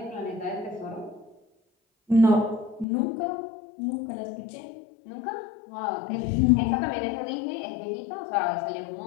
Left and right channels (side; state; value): right; drops out; at 2.9 s